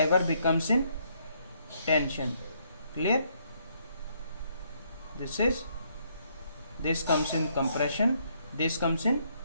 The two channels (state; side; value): inverted; both; correlation -0.71